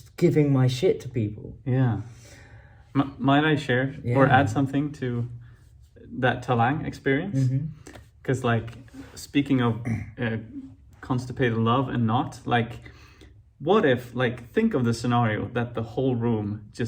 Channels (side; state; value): both; identical; correlation 1.00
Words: giving my shit to people. Yeah. Might I share or add something to that Talang experience? Because like speaking of constipated love and not, like what if, like, think of the scenario that the whole room